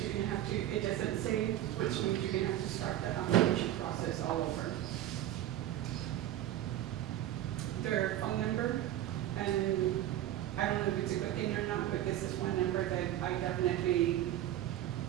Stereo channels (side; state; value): left; quieter; 12.9 dB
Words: you're gonna have to, it doesn't save, which means you're gonna have to start that application process all over. Their phone number, and I don't know if it's a good thing or not, but this is one number that I definitely